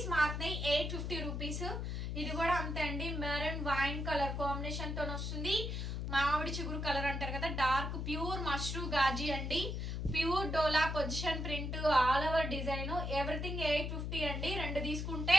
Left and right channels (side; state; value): left; noise; hum, 3 dB below the sound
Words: మారుతున్నాయి. 850 రూపీస్. ఇది కూడా అంతే అండి. మెరూన్ వైన్ కలర్ కాంబినేషన్ తో వస్తుంది. మామిడి చిగురు కలర్ అంటారు కదా, డార్క్ ప్యూర్ మష్రూ గాజీ అండి. Pure dola position print, all over design. Everything 850 అండి. 2 తీసుకుంటే